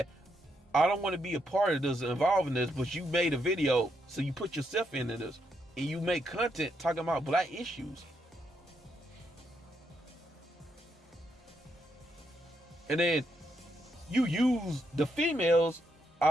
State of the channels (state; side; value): normal; both; correlation 0.78